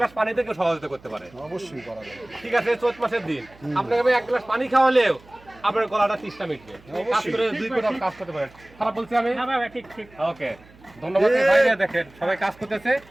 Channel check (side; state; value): right; noise; hum, 25 dB below the sound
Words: পানি থেকে সহযোগিতা করতে পারে। অবশ্যই করা যাবে। ঠিক আছে, চৈত মাসের দিন আপনাকে আমি এক গ্লাস পানি খাওয়ালেও আপনার গলাটা তৃষ্ণা মিটবে। কাজ করে 2 ফুট কাজ করতে পারেন। খারাপ বলছি আমি? ঠিক ঠিক। ওকে, ধন্যবাদ ভাই। দেখেন সবাই কাজ করতেছে,